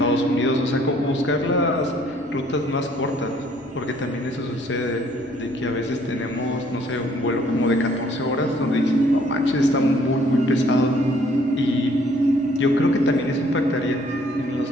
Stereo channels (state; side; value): normal; both; correlation 0.61